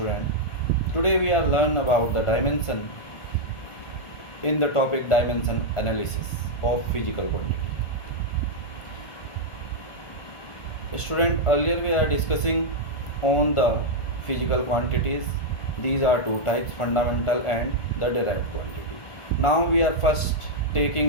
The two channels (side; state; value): right; late; 1.4 ms